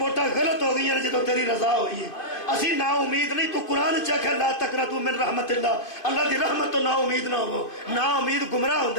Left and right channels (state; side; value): late; right; 2.5 ms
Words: غلط ہو گئی ہیں جدو تیری رضا ہوئی ہے اسی نا امید نہیں تو قرآن چکھ ہے لا تقنطوا من رحمت اللہ دی رحمت تو نا امید نہ ہو نا امید گمراہ